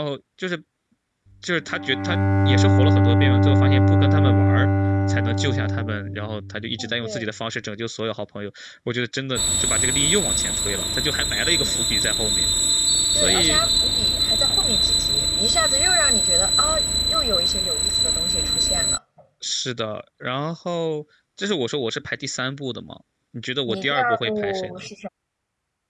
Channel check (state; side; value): identical; both; correlation 1.00